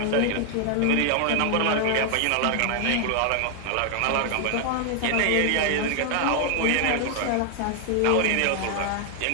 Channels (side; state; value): both; different; correlation 0.00